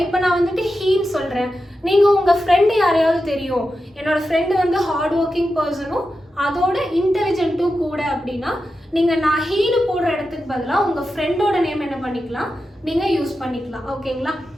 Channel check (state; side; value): normal; both; correlation 0.90